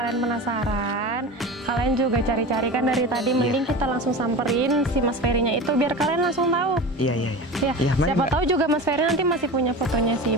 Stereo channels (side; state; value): both; normal; correlation 0.30